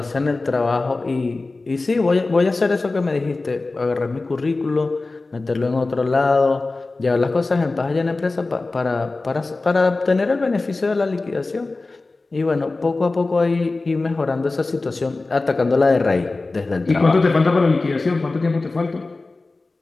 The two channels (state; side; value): quieter; right; 3.4 dB